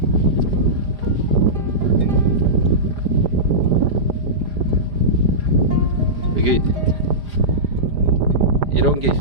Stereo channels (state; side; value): late; left; 4.9 ms